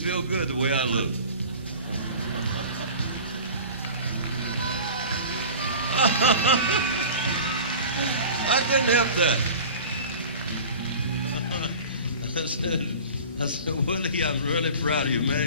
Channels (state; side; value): inverted; both; correlation -0.39